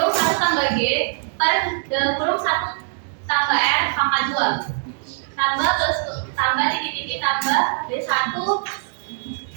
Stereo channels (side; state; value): left; silent; digital silence